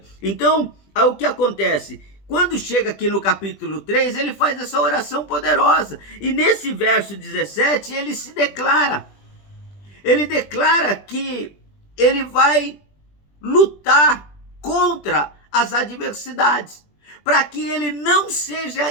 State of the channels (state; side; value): late; right; 20 ms